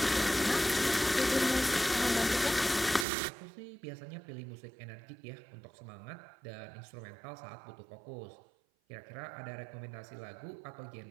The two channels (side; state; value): left; drops out; at 3.1 s